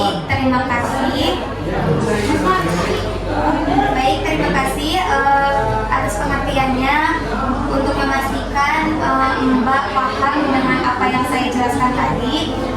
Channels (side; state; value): both; identical; correlation 1.00